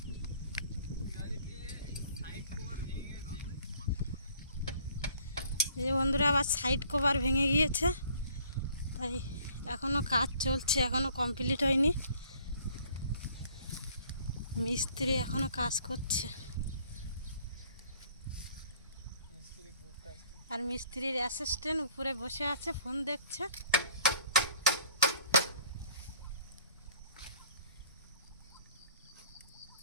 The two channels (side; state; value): both; inverted; correlation -0.56